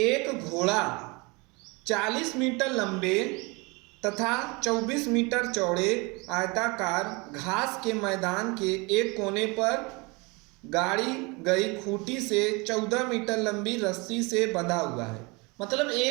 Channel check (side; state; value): left; quieter; 27.4 dB